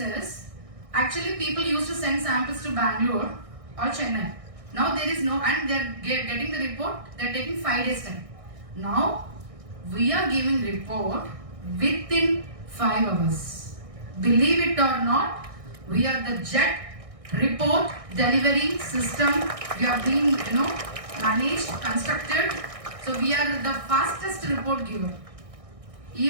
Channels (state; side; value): late; left; 1.6 ms